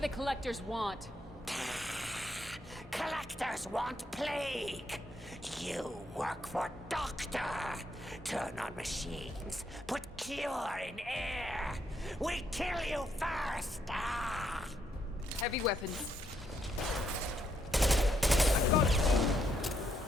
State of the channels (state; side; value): normal; both; correlation 0.75